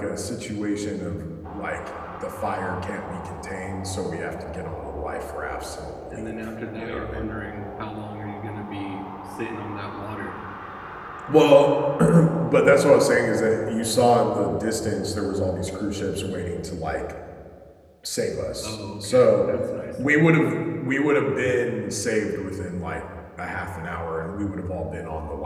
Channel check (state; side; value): identical; both; correlation 1.00